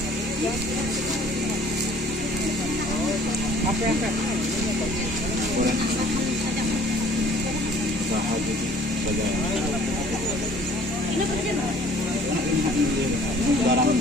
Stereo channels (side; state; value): both; normal; correlation 0.54